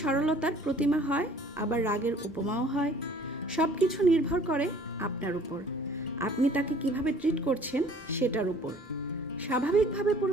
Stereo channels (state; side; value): normal; both; correlation 0.53